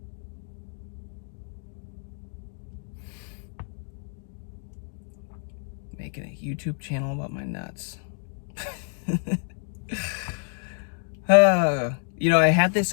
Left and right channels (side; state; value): right; silent; 59 dB below the other